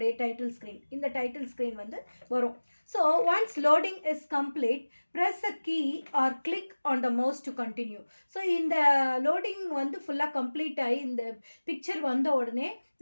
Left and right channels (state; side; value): inverted; both; correlation -1.00